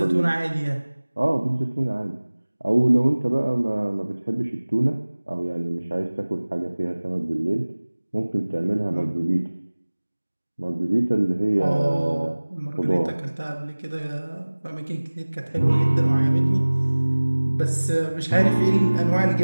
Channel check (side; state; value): both; inverted; correlation -1.00